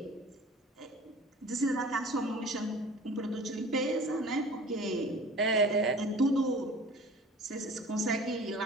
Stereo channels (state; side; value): normal; both; correlation 0.43